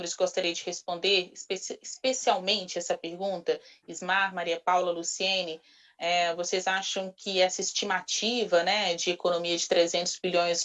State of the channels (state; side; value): identical; both; correlation 1.00